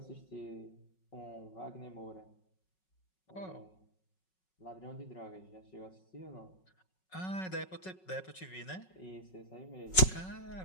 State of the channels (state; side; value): late; right; 5.4 ms